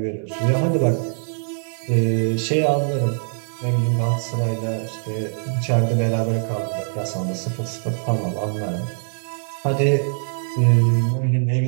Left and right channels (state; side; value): silent; left; 62 dB below the other